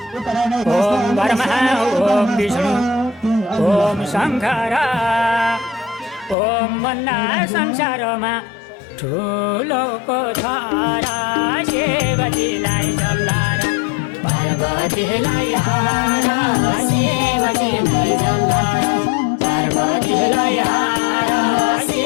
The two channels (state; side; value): drops out; right; at 6.4 s